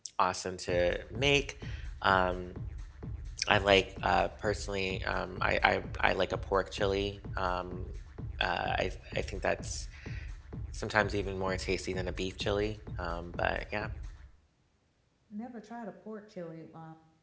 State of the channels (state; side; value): identical; both; correlation 1.00